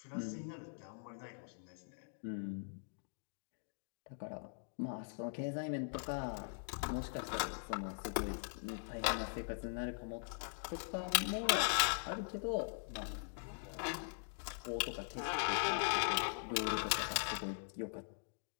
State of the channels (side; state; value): right; silent; digital silence